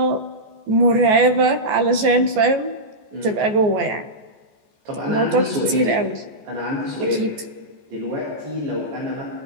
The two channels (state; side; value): late; left; 14 ms